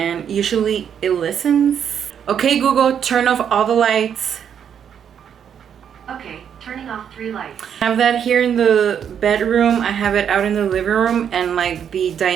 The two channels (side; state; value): left; quieter; 8.3 dB